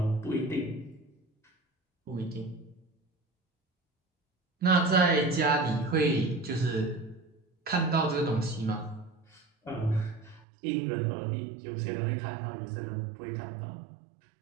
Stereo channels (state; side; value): drops out; left; at 10.4 s